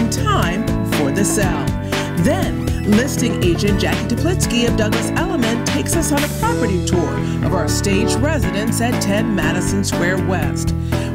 time for the sale. Then, listing agent Jacky Teplitzky of Douglas Elliman takes us on a property tour of our staged residence at 10 Madison Square West.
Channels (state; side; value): identical; both; correlation 1.00